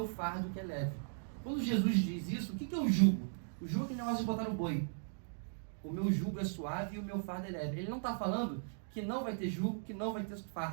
fardo que é leve. Quando Jesus diz isso, o que é o jugo? O jugo é aquele negócio de botar no boi. O meu jugo é suave e o meu fardo é leve. Ele não está falando que não vai ter jugo, que não vai ter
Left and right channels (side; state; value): left; silent; digital silence